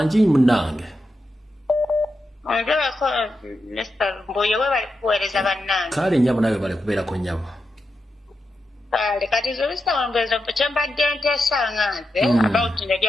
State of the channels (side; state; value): both; normal; correlation 0.87